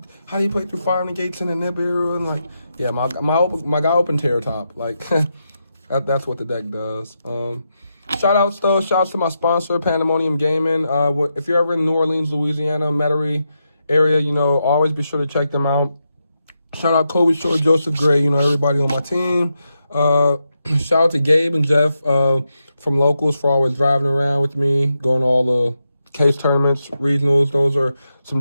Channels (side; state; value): both; inverted; correlation -0.85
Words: play through Fire Negates in the Nibiru? And like, yeah, my guy opened Terror Top. Like that's what the deck does. Shout outs though. Shout outs to my sponsor, Pandemonium Gaming. If you're ever in New Orleans, Louisiana, Metairie area, you know, always be sure to check them out. Shout out Kobe Short, Joseph Gray, you know, everybody on my team. Shout out to Gabe and Jeff from Locals for always driving around with me, going to all the case tournaments, regionals. Those are some